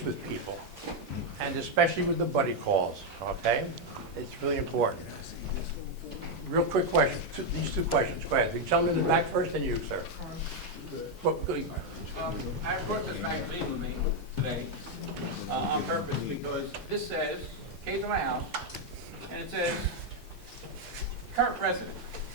with people, and especially with the buddy calls, okay? It's really important. Real quick question, these two questions. Go ahead. The gentleman in the back first, and you, sir. I brought this magazine with me today on purpose because this says, came to my house, and it says, current president,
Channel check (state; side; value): normal; both; correlation 0.02